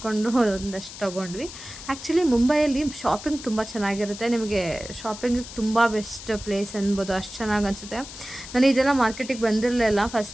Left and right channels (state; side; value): noise; left; hiss, 13 dB below the sound